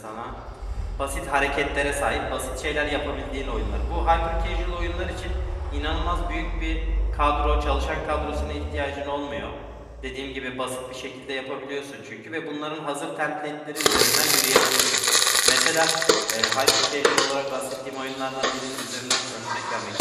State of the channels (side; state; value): both; identical; correlation 1.00